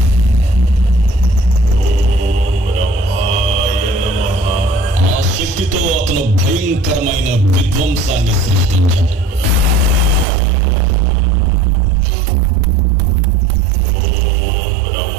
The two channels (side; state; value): left; drops out; at 10.2 s